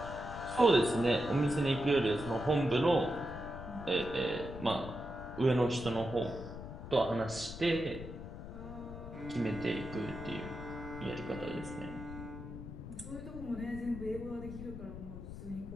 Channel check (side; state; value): left; noise; rumble, 10 dB below the sound